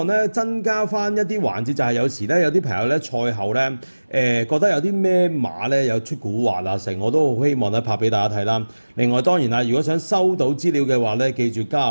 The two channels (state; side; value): inverted; both; correlation -1.00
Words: 咧增加翻一啲環節，就係有時咧有啲朋友咧賽後咧覺得有啲咩馬咧有出古惑啊成，我都好希望咧拍俾大家睇啦。另外當然啦，如果想收到資料嘅話咧，記住加下